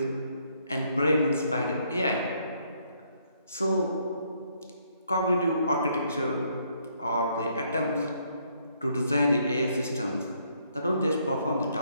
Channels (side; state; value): both; inverted; correlation -0.70